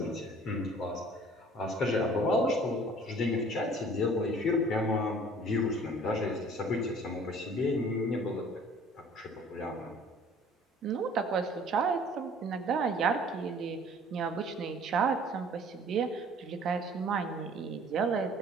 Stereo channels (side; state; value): both; normal; correlation 0.52